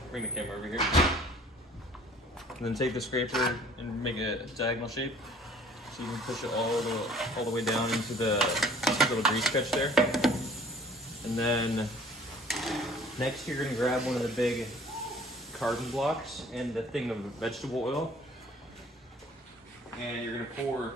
Bring the camera over here. And then take the scraper and make a diagonal shape. So you can push it all the way down into the little grease catch there. And then next you're gonna grab one of the big carbon blocks and the thing of vegetable oil. And you're gonna pour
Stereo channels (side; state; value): both; normal; correlation 0.52